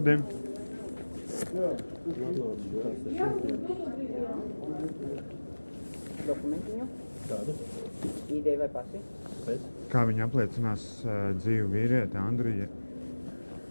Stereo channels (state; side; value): inverted; both; correlation -1.00